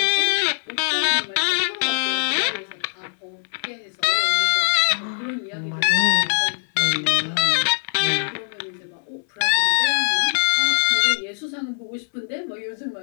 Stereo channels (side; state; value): right; silent; 61 dB below the other